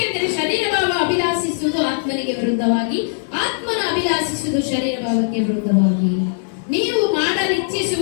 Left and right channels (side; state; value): right; silent; 58 dB below the other